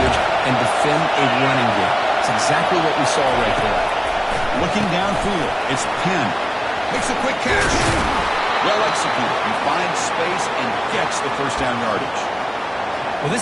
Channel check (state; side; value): identical; both; correlation 1.00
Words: and defend a running game. It's exactly what we saw right there. Looking downfield, it's Penn. Makes a quick catch. Well executed. He finds space and gets the first down yardage. Well,